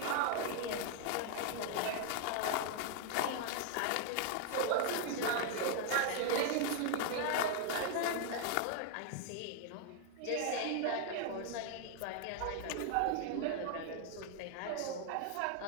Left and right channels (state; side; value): different; both; correlation 0.00